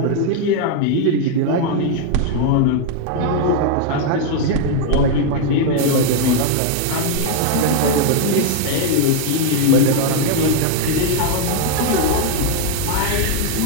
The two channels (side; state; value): both; different; correlation 0.00